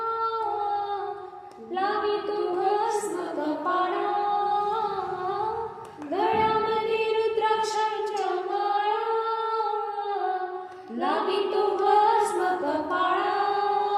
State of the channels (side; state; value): both; identical; correlation 1.00